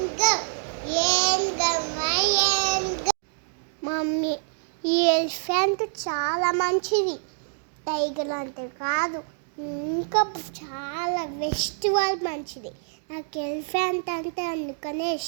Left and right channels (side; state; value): left; silent; digital silence